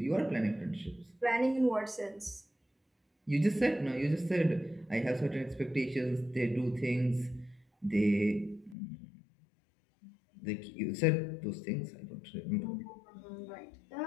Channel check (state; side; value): drops out; right; at 8.8 s